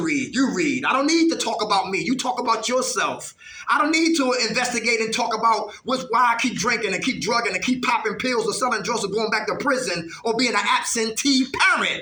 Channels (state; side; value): identical; both; correlation 1.00